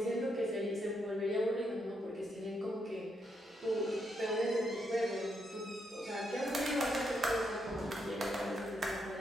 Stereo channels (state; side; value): normal; both; correlation 0.79